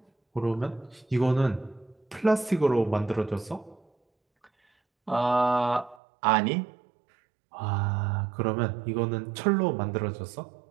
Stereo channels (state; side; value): drops out; left; at 6.0 s